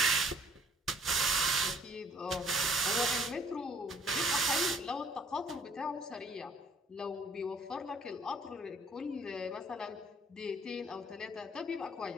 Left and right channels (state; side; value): normal; both; correlation 0.60